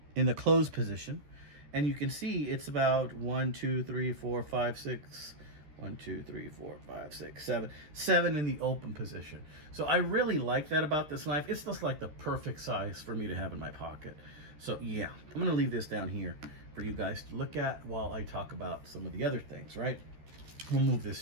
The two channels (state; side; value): late; left; 13 ms